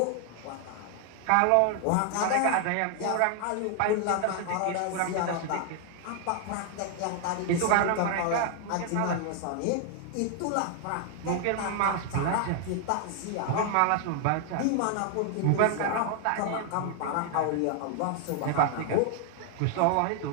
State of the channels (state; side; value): different; both; correlation 0.00